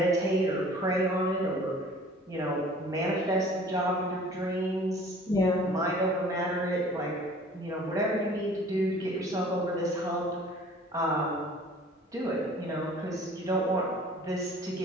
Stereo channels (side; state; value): both; normal; correlation 0.49